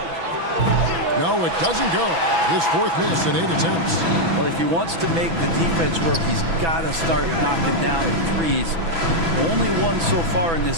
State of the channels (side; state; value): left; late; 6.0 ms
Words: No, it doesn't go. His 4th miss in 8 attempts. Well, if he wants to make the defense work, he's got to start knocking down the threes. Only one so far in